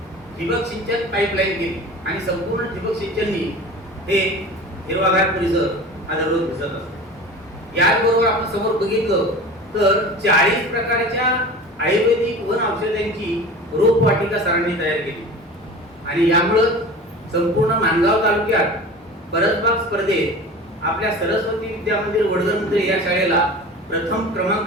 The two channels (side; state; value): both; normal; correlation 0.36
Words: ठिबक सिंचन पाईपलाईन केली आणि संपूर्ण ठिबक सिंचननी हे हिरवागार परिसर हा दररोज दिसत असतो. याचबरोबर आपण समोर बघितलं तर 40 प्रकारच्या आयुर्वेदिक वन औषधांची रोपवाटिका सरांनी तयार केली आणि यामुळं संपूर्ण माणगाव तालुक्यात परसबाग स्पर्धेत आपल्या सरस्वती विद्या मंदिर वडगरमुद्रे या शाळेला प्रथम